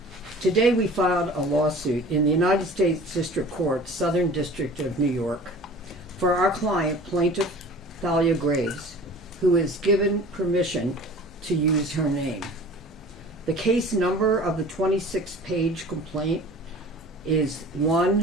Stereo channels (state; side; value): normal; both; correlation 0.43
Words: Today we filed a lawsuit in the United States District Court, Southern District of New York, for our client, plaintiff Thalia Graves, who is given permission to use her name. The case number of the 26-page complaint is